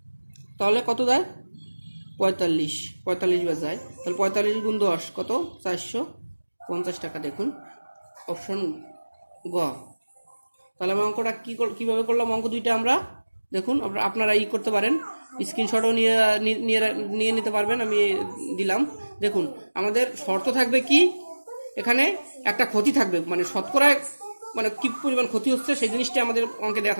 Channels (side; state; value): both; inverted; correlation -1.00